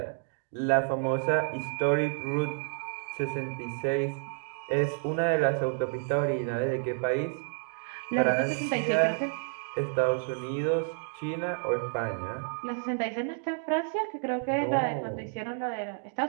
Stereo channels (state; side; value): silent; left; digital silence